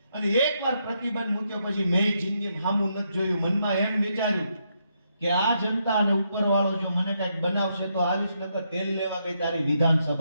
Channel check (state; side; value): inverted; both; correlation -0.79